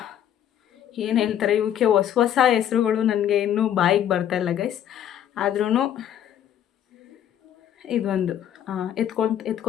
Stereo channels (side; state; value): right; quieter; 10.3 dB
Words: ಏನು ಹೇಳ್ತಾರೆ ಇವಕ್ಕೆ, ಹೊಸ ಹೆಸ್ರುಗಳು ನನಗೆ ಇನ್ನೂ ಬಾಯಿಗೆ ಬರ್ತಾಯಿಲ್ಲ ಗೈಸ್. ಆದ್ರೂ ಇದೊಂದು